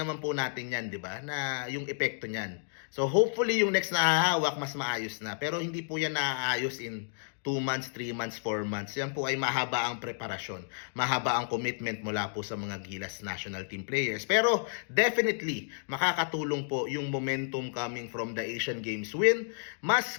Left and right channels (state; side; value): silent; right; digital silence